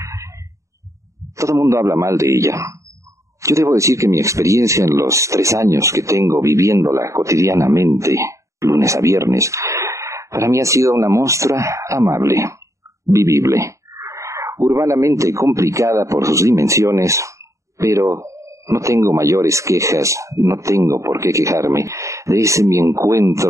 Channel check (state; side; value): late; left; 0.15 ms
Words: Todo el mundo habla mal de ella. Yo debo decir que mi experiencia en los 3 años que tengo viviéndola cotidianamente, lunes a viernes, para mí ha sido una monstra amable, vivible, urbanamente complicada por sus dimensiones, pero no tengo mayores quejas, no tengo por qué quejarme de ese mi